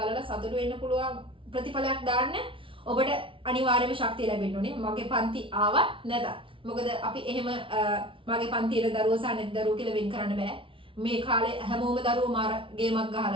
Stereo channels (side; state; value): left; late; 0.25 ms